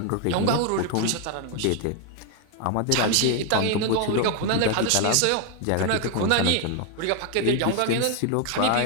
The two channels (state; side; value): different; both; correlation 0.01